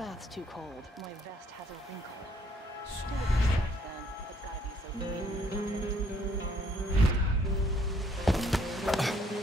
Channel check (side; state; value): both; normal; correlation 0.65